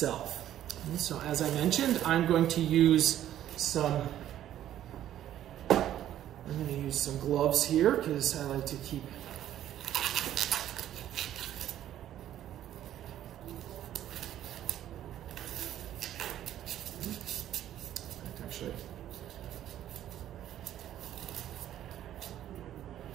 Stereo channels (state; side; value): quieter; left; 11.8 dB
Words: And so as I mentioned, I'm going to use some gloves here because I like to keep